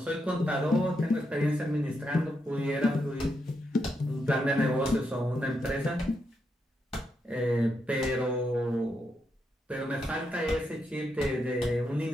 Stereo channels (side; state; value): both; normal; correlation 0.82